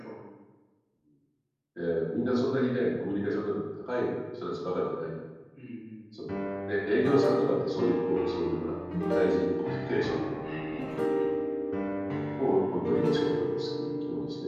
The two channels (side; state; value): both; identical; correlation 1.00